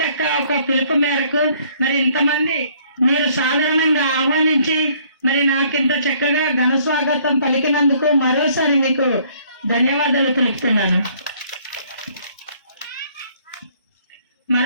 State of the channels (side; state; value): both; inverted; correlation -0.61